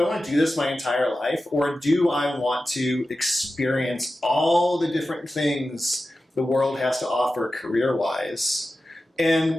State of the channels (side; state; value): both; normal; correlation 0.93